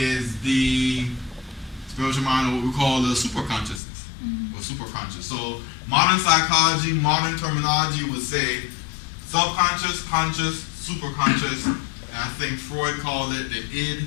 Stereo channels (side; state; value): right; drops out; at 3.8 s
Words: the spiritual mind, or what we call the superconsciousness, or superconscious. So modern psychology, modern terminology would say subconscious, conscious, superconscious, and I think Freud called it the